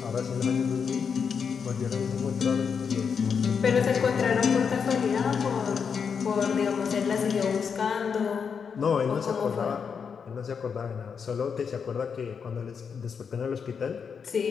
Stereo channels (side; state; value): right; quieter; 6.4 dB